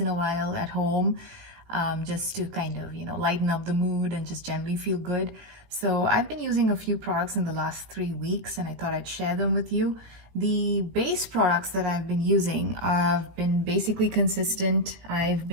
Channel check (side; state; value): left; late; 18 ms